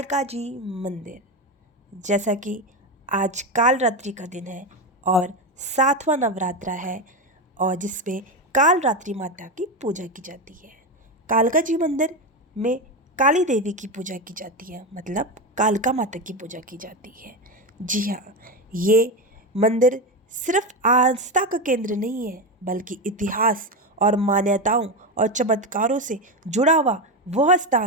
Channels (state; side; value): normal; both; correlation 0.14